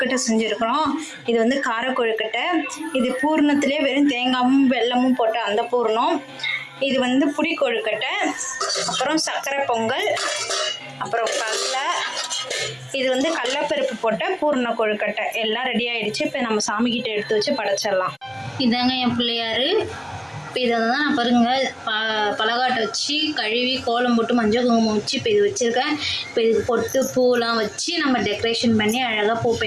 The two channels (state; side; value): identical; both; correlation 1.00